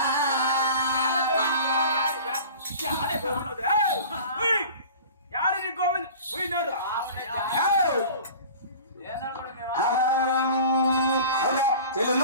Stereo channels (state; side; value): inverted; both; correlation -0.40